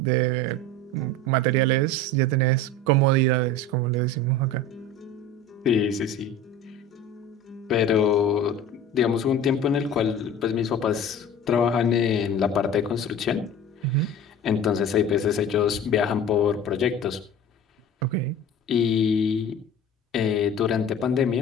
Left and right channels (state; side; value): normal; both; correlation 0.37